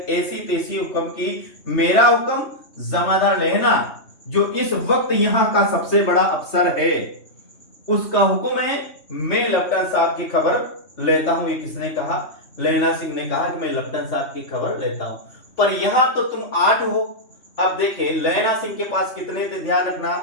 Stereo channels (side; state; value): right; late; 3.2 ms